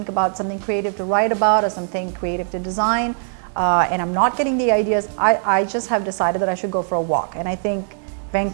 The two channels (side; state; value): left; silent; digital silence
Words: about something creative to write about or something creative to design, and I'm not getting the ideas, I just have decided that I should go for a walk. And I think